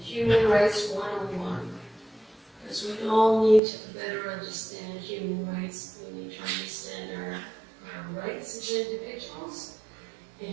Rights 101. Because we all need to better understand human rights. We need to understand our rights as individuals,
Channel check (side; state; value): left; drops out; at 3.6 s